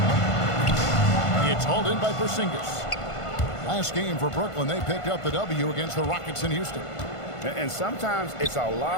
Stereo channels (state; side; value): late; right; 1.5 ms